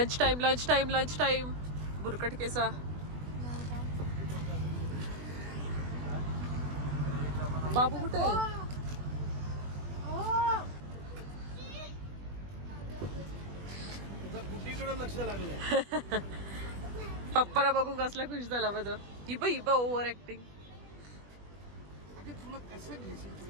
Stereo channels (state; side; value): late; left; 20 ms